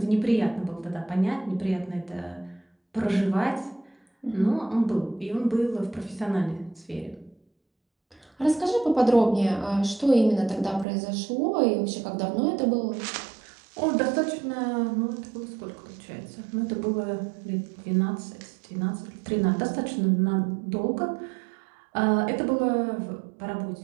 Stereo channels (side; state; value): left; drops out; at 10.9 s